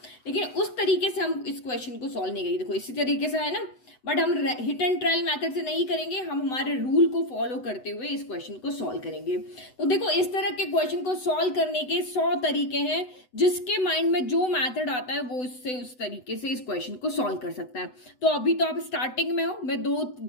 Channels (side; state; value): right; late; 8.0 ms